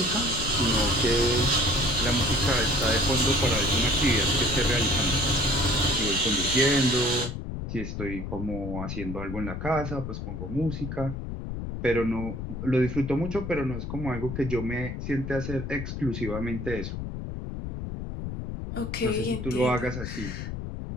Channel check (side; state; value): left; noise; rumble, 6 dB below the sound